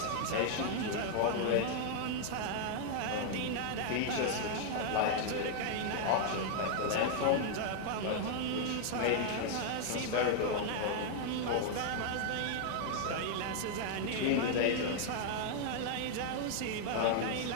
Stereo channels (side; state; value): both; different; correlation 0.00